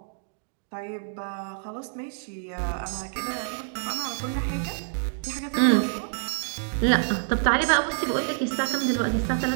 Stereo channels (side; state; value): left; silent; digital silence